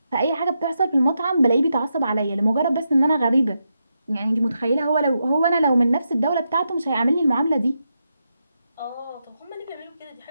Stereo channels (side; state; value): both; inverted; correlation -0.85